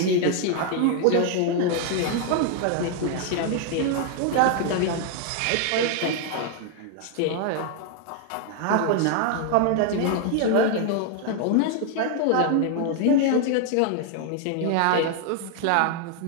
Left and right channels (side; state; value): both; different; correlation 0.00